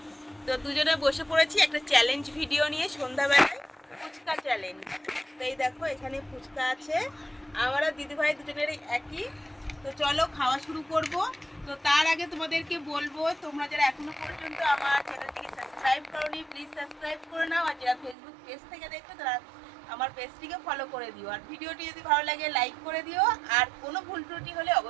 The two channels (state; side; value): drops out; left; at 18.2 s